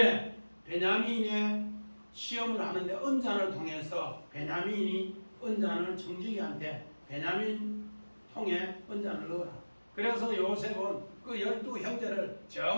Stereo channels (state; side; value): inverted; both; correlation -1.00